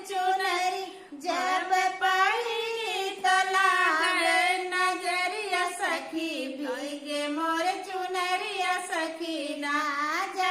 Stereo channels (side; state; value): both; identical; correlation 1.00